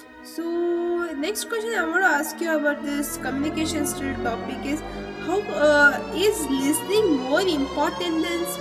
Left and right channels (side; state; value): both; identical; correlation 1.00